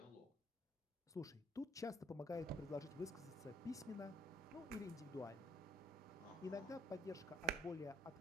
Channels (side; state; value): both; normal; correlation 0.64